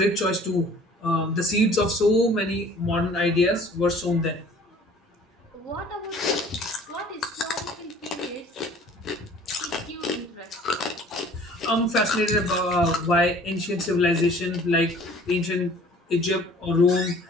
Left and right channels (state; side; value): normal; both; correlation 0.51